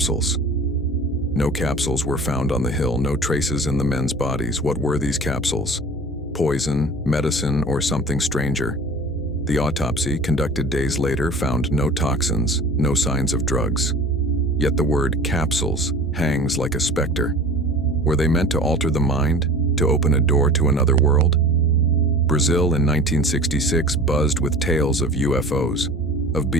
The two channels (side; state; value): both; normal; correlation 0.41